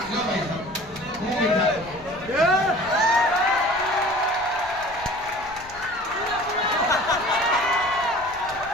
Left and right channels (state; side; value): noise; left; rumble, 21 dB below the sound